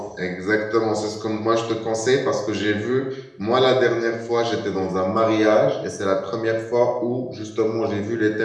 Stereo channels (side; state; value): both; identical; correlation 1.00